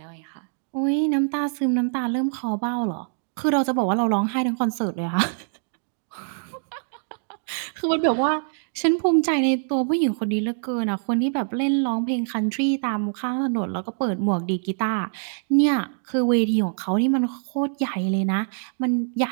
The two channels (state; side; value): silent; left; 62 dB below the other